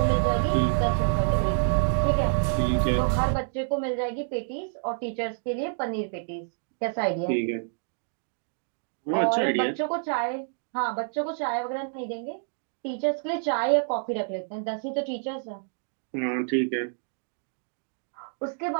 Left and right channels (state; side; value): silent; left; digital silence